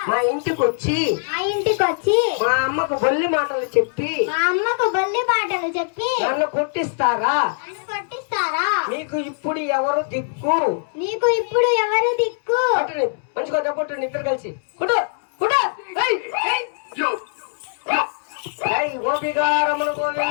మా ఇంటికి వచ్చి మా ఇంటికి వచ్చి మా అమ్మకు బొల్లి మాటలు చెప్పి మా అమ్మకు బొల్లి మాటలు చెప్పి నన్ను కొట్టిస్తారా? నన్ను కొట్టిస్తారా? మీకు ఇప్పుడు ఎవరు దిక్కు? నీకు ఇప్పుడు ఎవరు దిక్కు? కొట్టండి, మంచిగా కొట్టండి ఇద్దరు కలిసి. కొట్టు కొట్టు. ఏయ్, ఏయ్. ఏయ్, గోపికారములు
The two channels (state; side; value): silent; right; 65 dB below the other